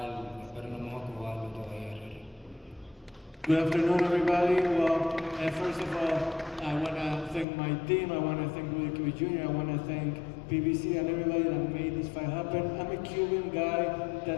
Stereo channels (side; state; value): right; drops out; at 7.5 s